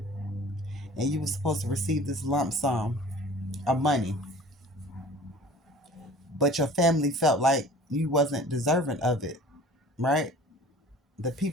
and you were supposed to receive this lump sum of money, but your family felt like you wasn't deserving of it, right? The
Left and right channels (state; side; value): normal; both; correlation 0.45